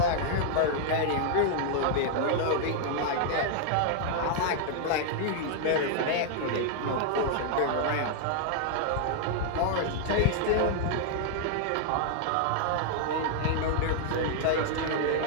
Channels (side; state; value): both; different; correlation 0.00